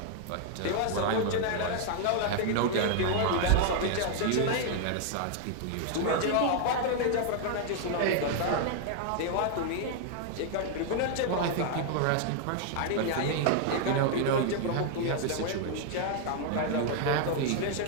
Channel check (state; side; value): different; both; correlation 0.00